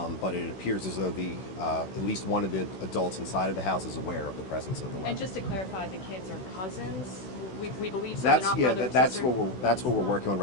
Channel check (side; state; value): right; late; 16 ms